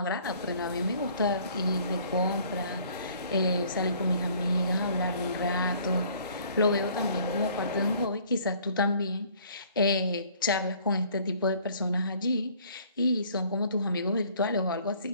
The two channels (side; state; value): both; inverted; correlation -0.57